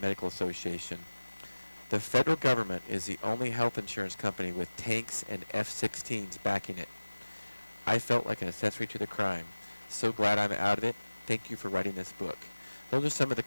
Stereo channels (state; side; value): inverted; both; correlation -1.00